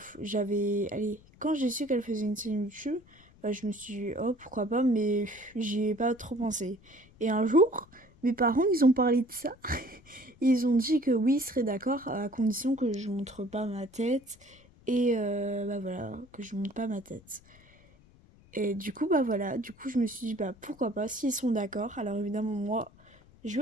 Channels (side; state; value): left; noise; rumble, 26 dB below the sound